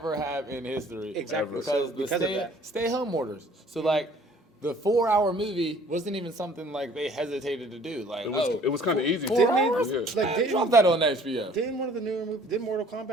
have in history. Exactly. Because So the because of that. stay home orders. So like the 4 hour movie wasn't even something like they hesitated to do. Like It was kind of easy. 4 Didn't hours? it? Yeah. Like, didn't- Drop that on HBO. Didn't one of the newer movies, did Mortal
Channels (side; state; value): both; normal; correlation 0.54